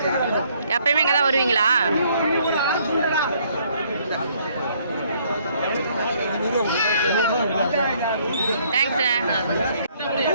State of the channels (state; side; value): inverted; both; correlation -0.65